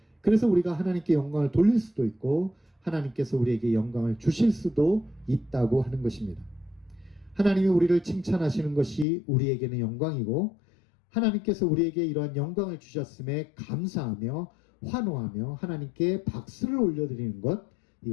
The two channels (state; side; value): drops out; right; at 9.1 s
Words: 그래서 우리가 하나님께 영광을 돌릴 수도 있고 하나님께서 우리에게 영광을 주실 수도 있다고 하는 것입니다. 하나님이 우리를 칭찬하시는 것이 우리에게는 영광이고 하나님께서 우리에게 이러한 영광을 주셨음에 감사하며 환호하며 하나님께 박수를 올려드리는 것,